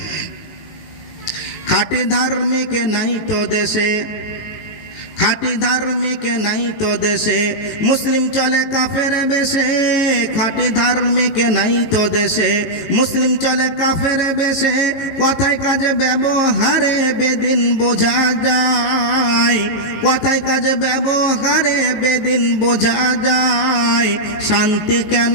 খাঁটি ধার্মিক নাই তো দেশে, খাঁটি ধার্মিক নাই তো দেশে, মুসলিম চলে কাফের বেশে। খাঁটি ধার্মিক নাই তো দেশে, মুসলিম চলে কাফের বেশে। কথায় কাজে ব্যবহারে বেদিন বোঝা যায়, কথায় কাজে ব্যবহারে বেদিন বোঝা যায়। শান্তি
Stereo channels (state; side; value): late; right; 18 ms